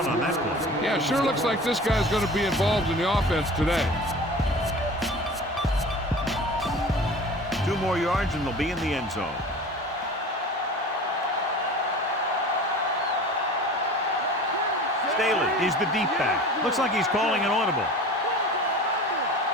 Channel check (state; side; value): normal; both; correlation 0.39